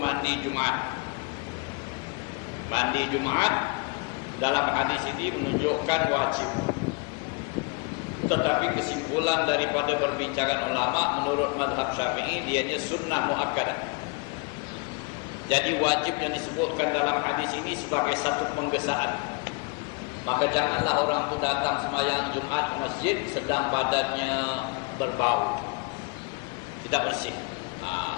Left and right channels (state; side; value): quieter; right; 29.5 dB